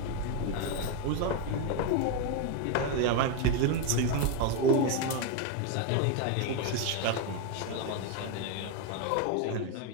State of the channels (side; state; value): both; different; correlation 0.02